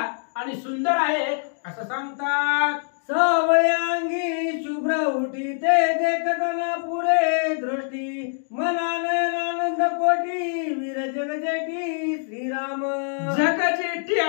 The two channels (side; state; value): right; silent; digital silence